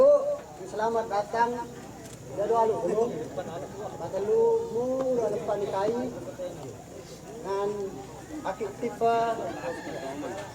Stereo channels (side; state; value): both; identical; correlation 1.00